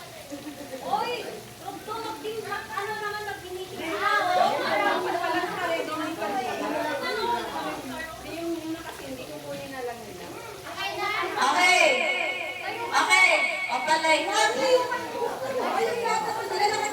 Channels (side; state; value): both; identical; correlation 1.00